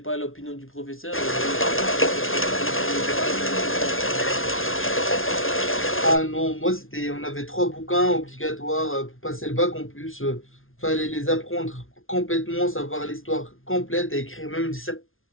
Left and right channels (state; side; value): late; right; 0.60 ms